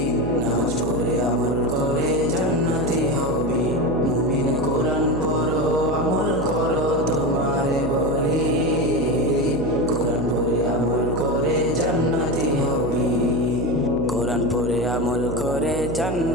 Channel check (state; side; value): noise; right; hum, 5 dB below the sound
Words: নামাজ পড়ে আমল করে জান্নাতি হবে। মুমিন কোরআন পড়ো, আমল করো, তোমারে বলি, কোরআন পড়ে আমল করে জান্নাতি হবে। কোরআন পড়ে আমল করে